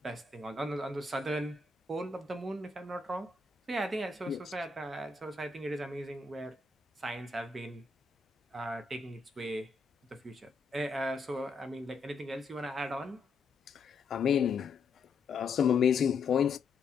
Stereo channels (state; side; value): quieter; right; 4.2 dB